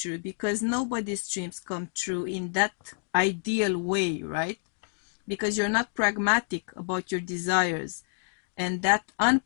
because nobody's dreams come true in that ideal way, right? Because you're not pragmatic about your desires, and that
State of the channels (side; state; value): right; silent; digital silence